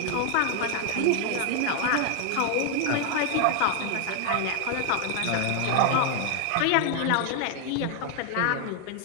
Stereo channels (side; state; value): both; different; correlation 0.00